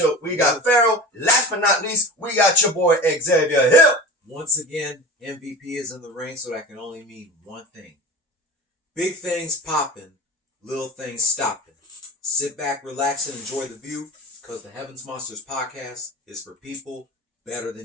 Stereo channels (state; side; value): normal; both; correlation 0.34